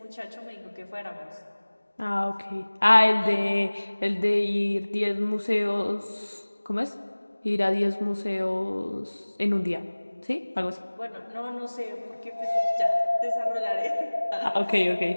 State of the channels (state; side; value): inverted; both; correlation -1.00